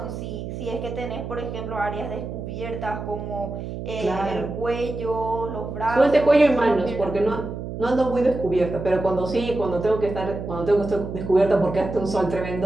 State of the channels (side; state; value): right; noise; hum, 7 dB below the sound